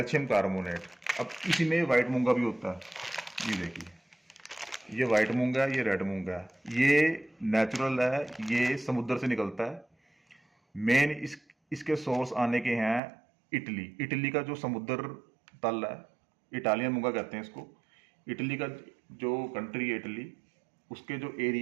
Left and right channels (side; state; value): left; drops out; at 13.0 s